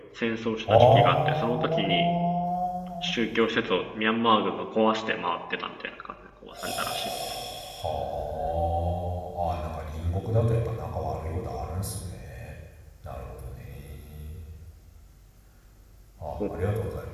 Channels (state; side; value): identical; both; correlation 1.00